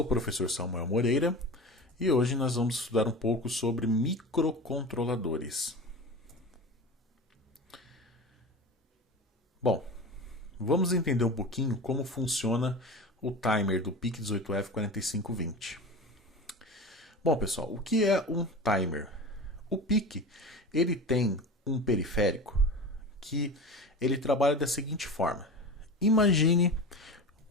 o professor Samuel Moreira e hoje nós vamos estudar um pouco sobre microcontroladores. Bom, vamos entender um pouquinho como funciona o timer do PIC18F4520. Bom, pessoal, o que é um timer? O PIC, ele tem um periférico que ele trabalha da seguinte forma. Imagine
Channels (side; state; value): both; normal; correlation 0.31